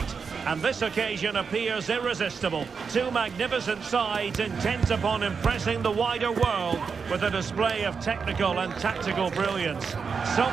And this occasion appears irresistible. Two magnificent sides intent upon impressing the wider world with a display of technical and tactical brilliance. So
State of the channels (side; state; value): left; quieter; 5.7 dB